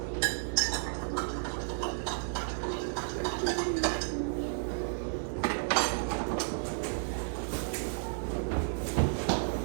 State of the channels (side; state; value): left; silent; digital silence